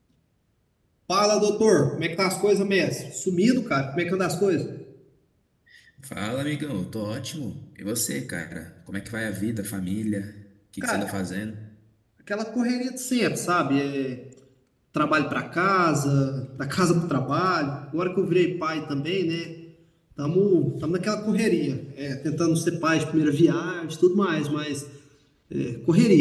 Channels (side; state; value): both; identical; correlation 1.00